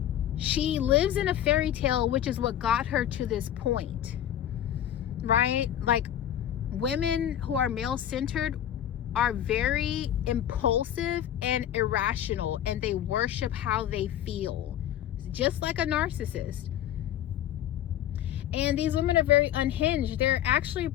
she lives in a fairy tale, which is what got her to this point, right? Like, women who are male-centered are very impulsive and irrational, and they worship how they feel, just like a narcissist. And these women are very unhinged. They're actually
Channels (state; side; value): quieter; right; 11.2 dB